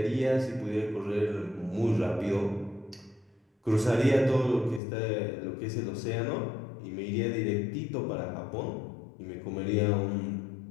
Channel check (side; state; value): right; drops out; at 4.8 s